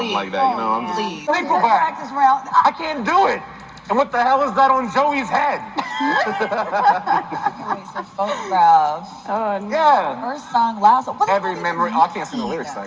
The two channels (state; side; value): identical; both; correlation 1.00